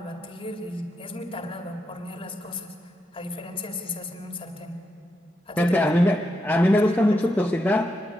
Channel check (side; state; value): both; normal; correlation 0.84